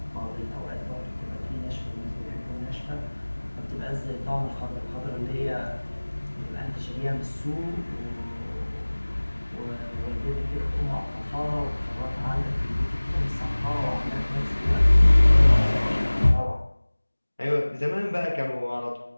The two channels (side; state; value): both; inverted; correlation -1.00